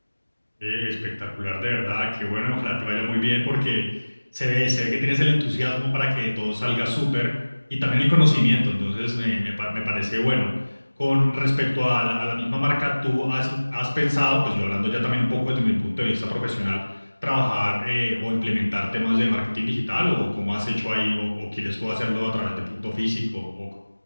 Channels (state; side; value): inverted; both; correlation -1.00